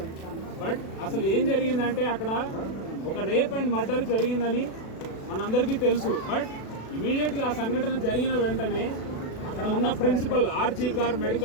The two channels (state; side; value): late; right; 36 ms